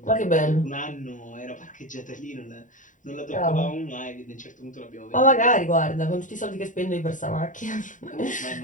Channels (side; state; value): right; late; 0.37 ms